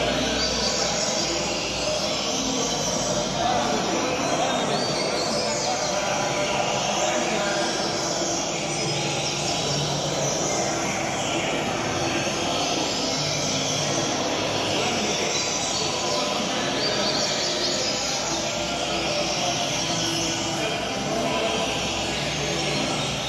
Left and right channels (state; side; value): identical; both; correlation 1.00